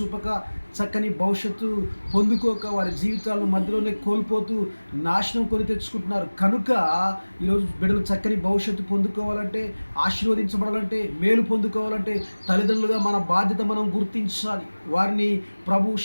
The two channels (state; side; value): inverted; both; correlation -1.00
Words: చక్కని భవిష్యత్తు పొందుకోక వారి జీవితాలను మధ్యలోనే కోల్పోతూ నాశనం కొని తెచ్చుకుంటున్నారు. కనుక ఈరోజు బిడ్డలు చక్కని భవిష్యత్తు పొందుకోవాలంటే, ఆశీర్వదించబడాలంటే, మేలు పొందుకోవాలంటే తల్లిదండ్రులుగా మన బాధ్యత మనం గుర్తించాలి. వారిని ప్రభు